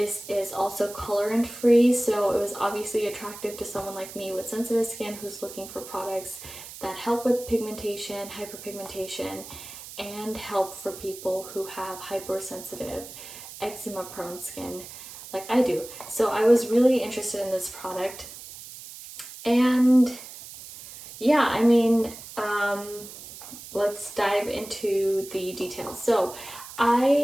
is also colorant free, so it was obviously attractive to someone like me with sensitive skin who's looking for products that help with pigmentation, hyperpigmentation, and help for people who have hypersensitive, eczema prone skin like I do. So I was really interested in this product, and yeah, let's dive into the details. So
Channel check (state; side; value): noise; right; hiss, 14 dB below the sound